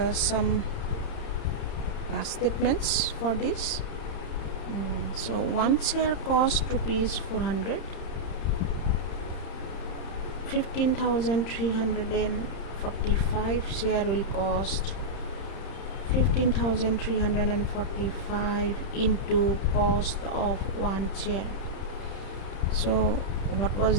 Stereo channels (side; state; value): right; late; 30 ms